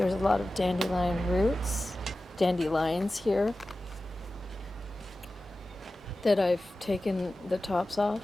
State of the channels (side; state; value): both; normal; correlation 0.95